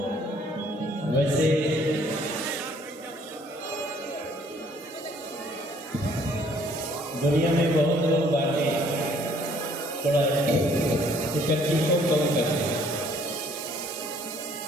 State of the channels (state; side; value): normal; both; correlation 0.61